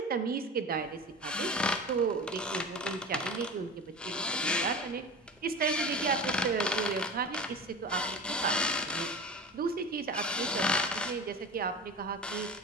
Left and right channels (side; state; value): both; normal; correlation 0.32